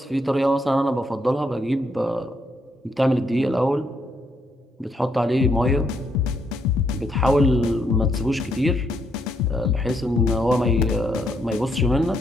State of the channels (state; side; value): normal; both; correlation 0.74